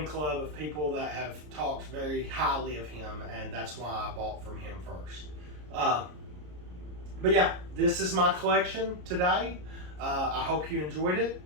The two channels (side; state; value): left; late; 33 ms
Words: club of people that have talked very highly of him, and that's why I bought from him first. But yeah, this is my collection today. I hope you enjoyed it.